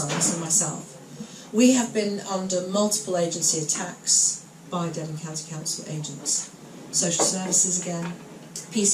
and myself. We have been under multiple agency attacks by Devon County Council agents, social services again,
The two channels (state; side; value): identical; both; correlation 1.00